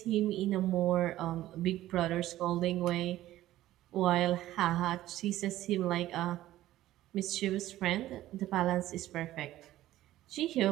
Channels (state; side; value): quieter; left; 14.7 dB